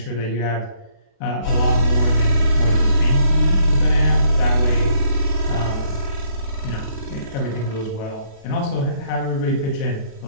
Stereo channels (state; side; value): late; right; 36 ms